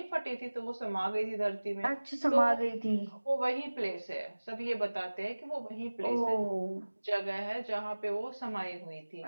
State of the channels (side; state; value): both; inverted; correlation -1.00